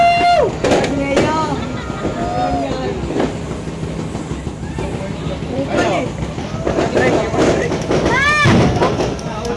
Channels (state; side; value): identical; both; correlation 1.00